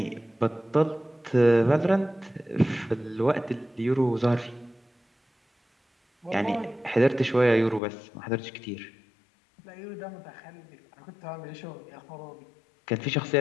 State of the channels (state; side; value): drops out; right; at 7.8 s